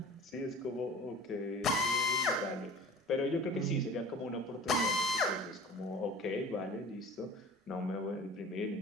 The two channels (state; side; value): normal; both; correlation 0.42